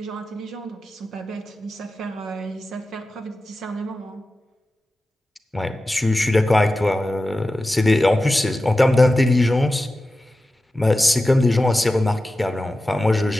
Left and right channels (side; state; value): both; normal; correlation 0.94